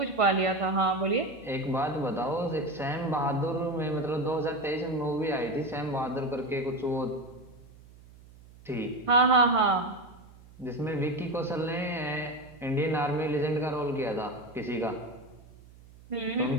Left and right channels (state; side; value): noise; right; hum, 22 dB below the sound